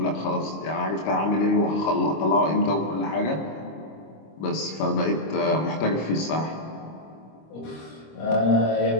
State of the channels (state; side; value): late; right; 25 ms